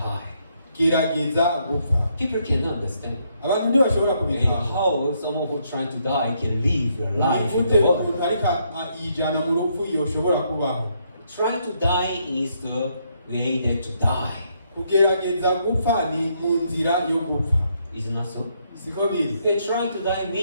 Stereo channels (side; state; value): both; inverted; correlation -0.74